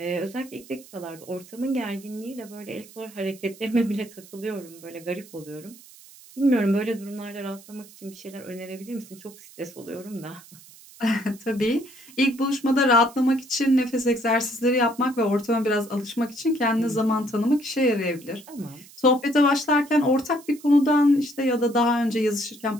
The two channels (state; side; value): noise; right; hiss, 22 dB below the sound